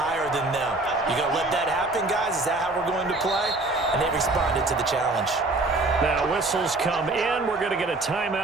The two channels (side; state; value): left; quieter; 3.0 dB